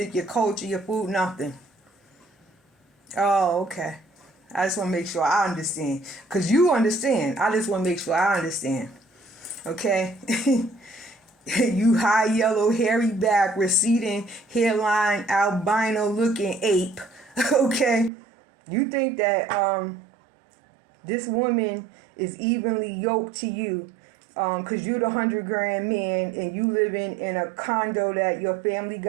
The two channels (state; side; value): drops out; left; at 18.1 s